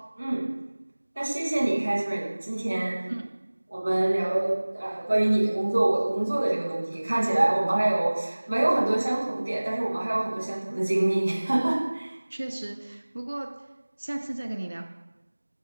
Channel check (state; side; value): inverted; both; correlation -1.00